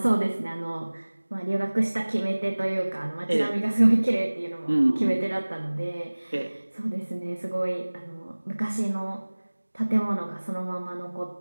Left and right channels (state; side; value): inverted; both; correlation -1.00